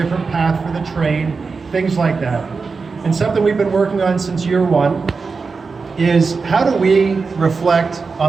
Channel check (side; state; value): left; quieter; 4.6 dB